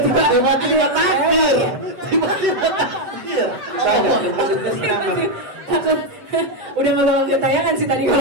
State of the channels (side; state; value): left; late; 7.9 ms